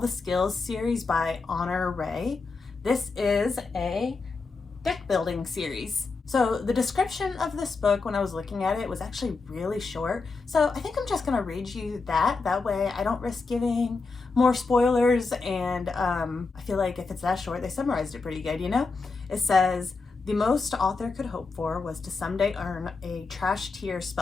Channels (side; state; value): right; quieter; 4.2 dB